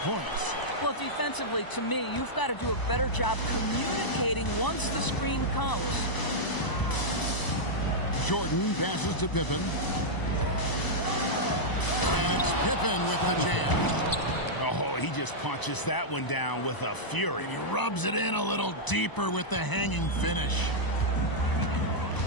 Well, defensively, to me, you've got to do a better job communicating once the screen comes. Jordan passes to Pippen. And it's Pippen with the jam. Oh, he just punches that one down with a fury. And he rubs it in a little deeper with the hanging finish.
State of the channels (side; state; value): right; late; 1.0 ms